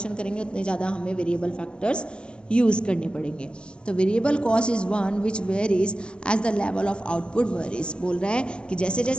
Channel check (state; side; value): late; right; 0.054 ms